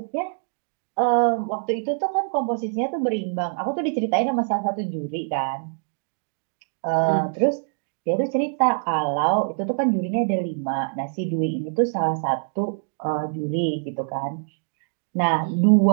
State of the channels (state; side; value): silent; left; digital silence